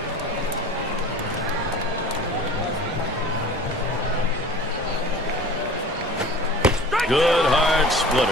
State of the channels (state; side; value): normal; both; correlation 0.41